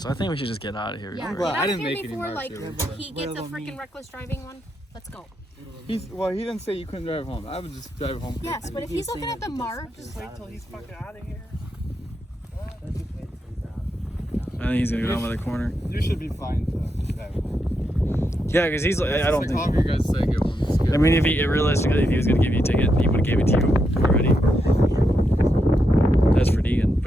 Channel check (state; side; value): normal; both; correlation 0.82